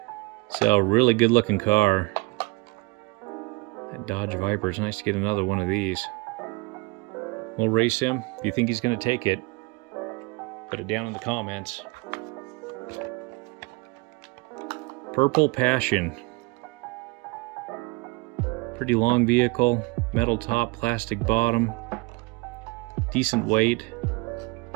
So really good looking car. That Dodge Viper, it's nice to get another one of these. We'll race him. If you think he's gonna take it, put it down in the comments. Purple Passion. Pretty long vehicle, metal top, plastic bottom, decent weight.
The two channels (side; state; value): left; quieter; 25.4 dB